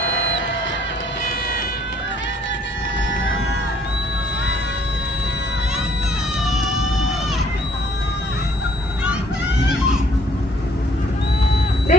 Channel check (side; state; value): both; normal; correlation 0.62